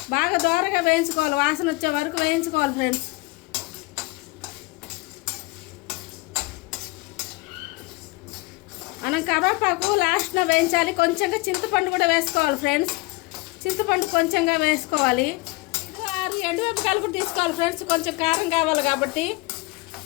బాగా దోరగా వేయించుకోవాలి, వాసన వచ్చే వరకు వేయించుకోవాలి ఫ్రెండ్స్. మనం కరివేపాకు లాస్ట్లో వేయించాలి. కొంచెంగా చింతపండు కూడా వేసుకోవాలి ఫ్రెండ్స్. చింతపండు కొంచెంగా వేసుకోవాలి. 6 ఎండుమిరపకాయలు కూడా తీసుకోవాలి ఫ్రెండ్స్, కొంచెం కారం కావాలి కాబట్టి.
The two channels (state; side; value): quieter; right; 23.7 dB